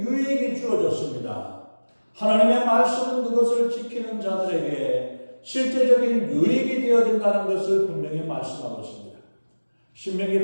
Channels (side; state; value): both; inverted; correlation -1.00